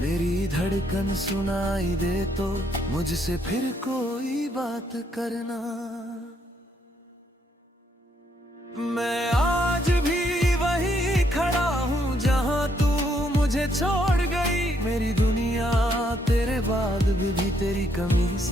धड़कन सुनाई दे तो मुझसे फिर कोई बात करना। मैं आज भी वही खड़ा हूँ जहाँ तू मुझे छोड़ गई। मेरी दुनिया तेरे बाद भी तेरी कमी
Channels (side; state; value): both; normal; correlation 0.73